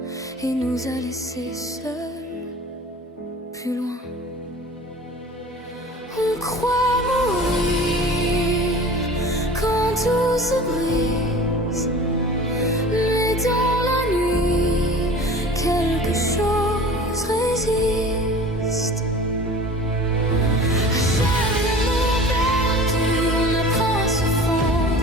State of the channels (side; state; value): both; normal; correlation 0.40